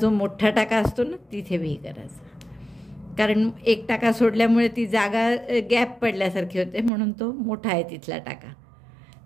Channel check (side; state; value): left; drops out; at 6.9 s